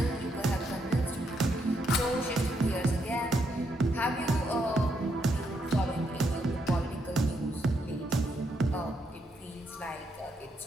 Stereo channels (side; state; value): both; normal; correlation 0.78